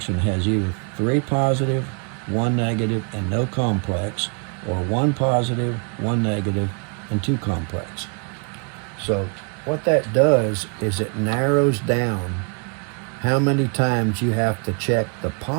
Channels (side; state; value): left; quieter; 38.2 dB